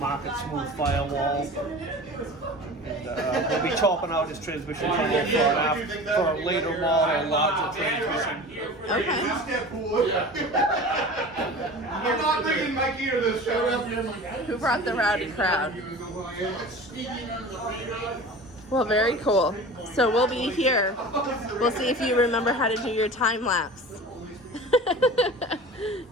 smooth firewall. And we'll be chopping out this transmission tunnel for a later model, larger transmission. Okay. I'm not bringing Mikey to this show. Who brought the rowdy crowd? Well, very cool. So we'll be here. We'll see if you remember how to do your time lapse.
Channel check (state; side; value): normal; both; correlation 0.37